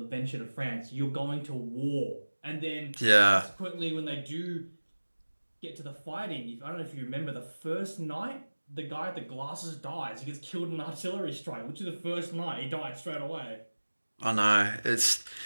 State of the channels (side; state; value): both; inverted; correlation -1.00